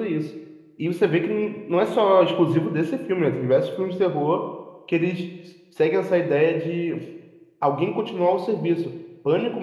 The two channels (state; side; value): identical; both; correlation 1.00